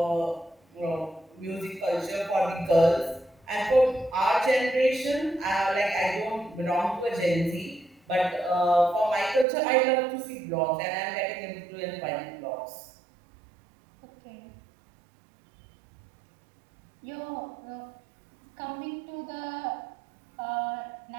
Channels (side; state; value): left; drops out; at 9.5 s